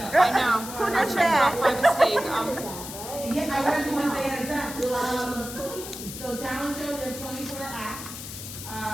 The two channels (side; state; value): left; noise; hiss, 10 dB below the sound